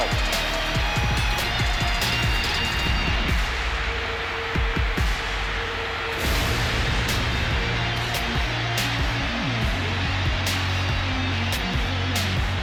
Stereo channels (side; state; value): both; identical; correlation 1.00